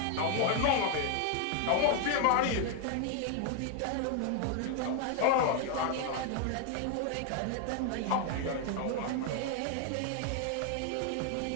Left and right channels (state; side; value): different; both; correlation 0.00